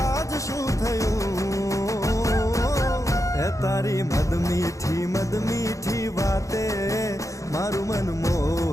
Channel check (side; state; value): right; late; 0.15 ms